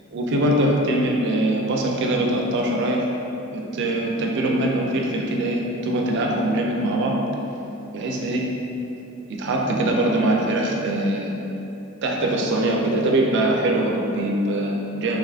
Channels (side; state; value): both; normal; correlation 0.36